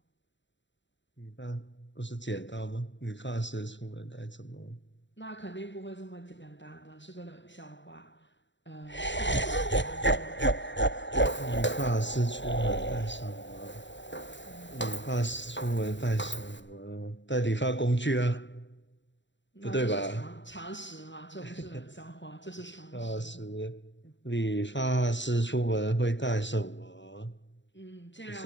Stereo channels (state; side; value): late; right; 0.53 ms